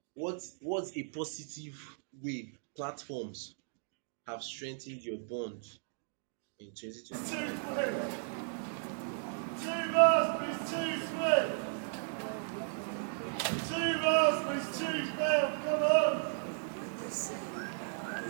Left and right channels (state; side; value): silent; left; digital silence